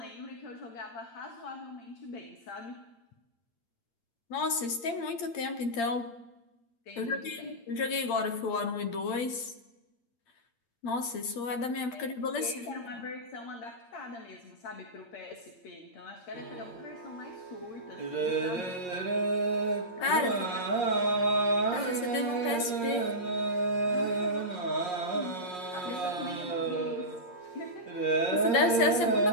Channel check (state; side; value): late; right; 8.7 ms